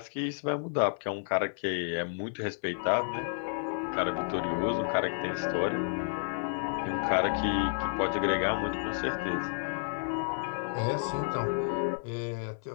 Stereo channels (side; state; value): right; silent; 57 dB below the other